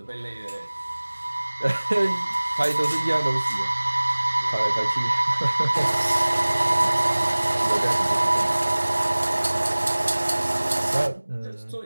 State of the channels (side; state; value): both; inverted; correlation -1.00